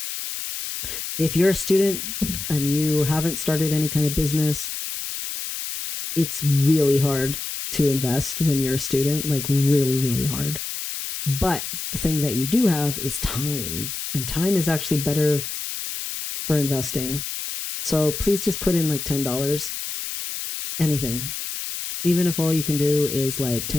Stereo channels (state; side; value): noise; left; hiss, 6 dB below the sound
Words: If you're a student and you haven't started any kind of business, it's really hard to invest when you're a student, like really, really hard. But the thing that you do have is time, and time is actually better for investing. So please just put in like $10 anything. Even if all you can do is like